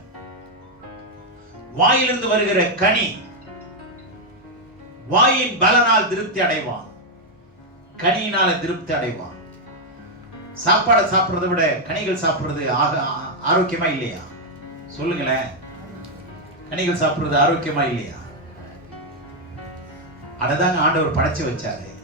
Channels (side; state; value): both; normal; correlation 0.01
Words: வாயிலிருந்து வருகிற கனி, வாயின் பலனால் திருப்தி அடைவான், கனியினால திருப்தி அடைவான். சாப்பாடை சாப்பிடுறதை விட கனிகள் சாப்பிடுறது ஆரோக்கியமா இல்லையா? சொல்லுங்களேன். கனிகள் சாப்பிடுறது ஆரோக்கியமா இல்லையா? அததாங்க ஆண்டவர் படைச்சு வச்சாரு.